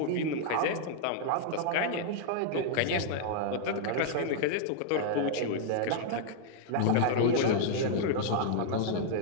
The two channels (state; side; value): different; both; correlation -0.01